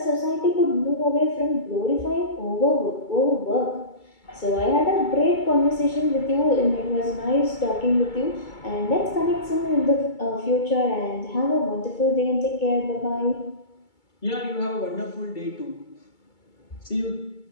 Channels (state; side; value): late; right; 2.3 ms